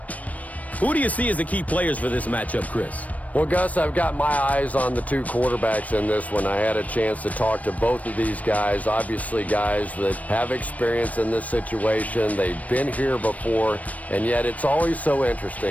Who do you see as the key players for this matchup, Chris? Well, Gus, I've got my eyes on the two quarterbacks in this one. I had a chance to talk to both of these guys, obviously guys that have experience in this situation. They've been here before, and yet it's always so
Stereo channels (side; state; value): right; late; 0.070 ms